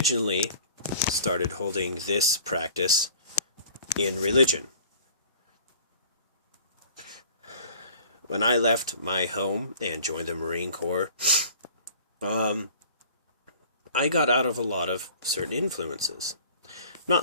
started holding this practice in religion. When I left my home and joined the Marine Corps, I got out of a lot of certain influences. I'm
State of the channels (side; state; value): both; inverted; correlation -0.47